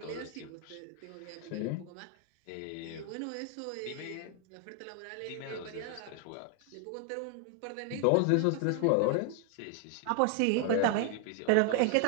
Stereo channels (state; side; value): different; both; correlation 0.01